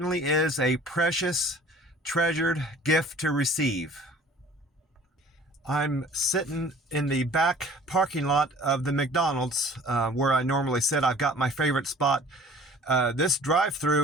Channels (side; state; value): both; normal; correlation 0.49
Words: is a precious, treasured gift to receive. I'm sitting in the back parking lot of the McDonald's where I normally sit. I've got my favorite spot. This